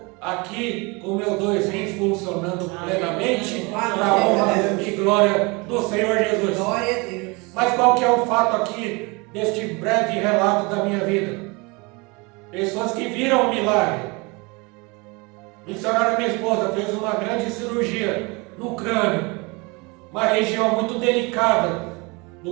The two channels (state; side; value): quieter; left; 27.4 dB